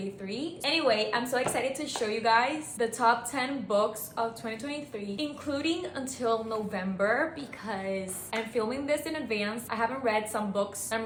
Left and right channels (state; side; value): identical; both; correlation 1.00